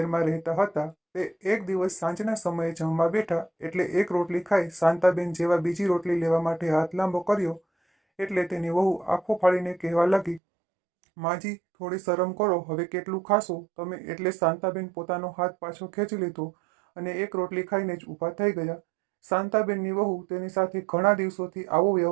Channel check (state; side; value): drops out; left; at 10.4 s